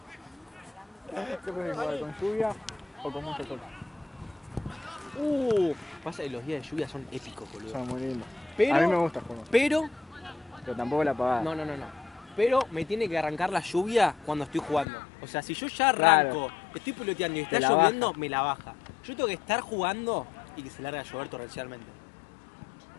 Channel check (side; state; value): right; drops out; at 14.9 s